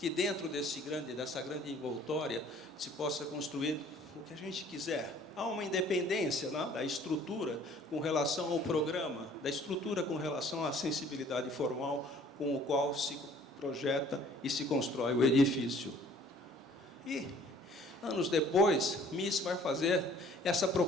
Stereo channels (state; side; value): normal; both; correlation 0.54